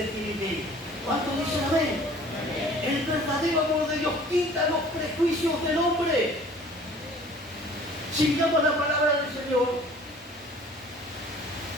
tienen que ir. ¿Cuántos dicen amén? El verdadero amor de Dios quita los prejuicios del hombre. Si miramos la palabra del Señor,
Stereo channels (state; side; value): normal; both; correlation 0.50